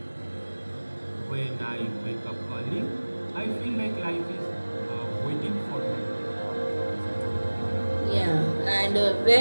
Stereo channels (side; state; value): both; inverted; correlation -1.00